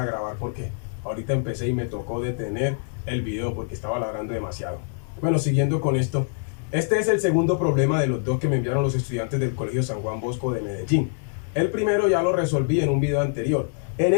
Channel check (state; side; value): silent; right; 62 dB below the other